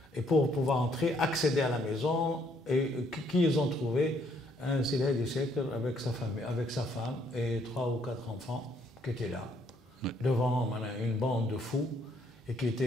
et pour pouvoir entrer, accéder à la maison et qui ils ont trouvé un Sidi Hedi Cheikh avec sa famille, avec sa femme et 3 ou 4 enfants qui étaient là devant une bande de fous et qui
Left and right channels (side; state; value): both; normal; correlation 0.68